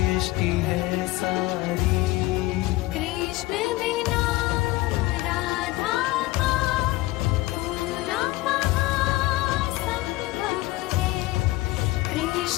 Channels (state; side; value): quieter; right; 19.1 dB